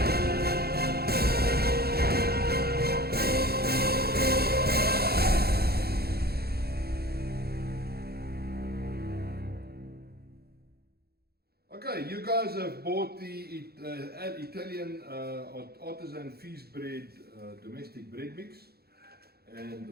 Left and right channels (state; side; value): late; left; 0.46 ms